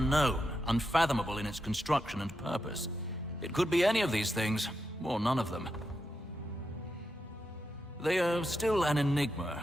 unfathomable in its construction and purpose. It could be any of these things, or none of them. They are still an enigma,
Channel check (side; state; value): both; normal; correlation 0.86